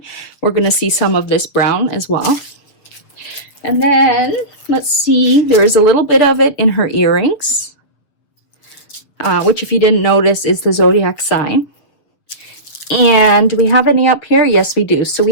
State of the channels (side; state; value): right; late; 7.1 ms